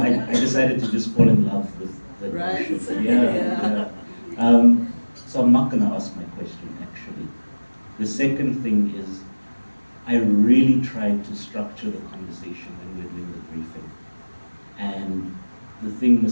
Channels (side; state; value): both; inverted; correlation -1.00